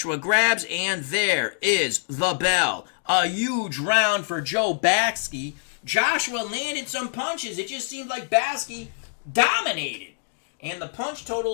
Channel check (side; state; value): right; silent; digital silence